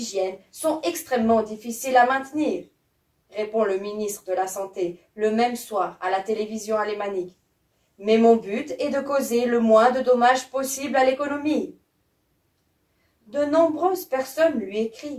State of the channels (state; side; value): identical; both; correlation 1.00